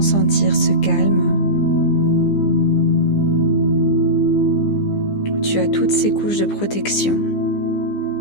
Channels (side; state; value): right; late; 15 ms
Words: sentir ce calme. Tu as toutes ces couches de protection.